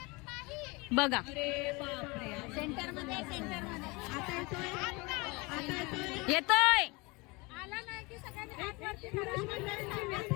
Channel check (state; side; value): quieter; right; 25.8 dB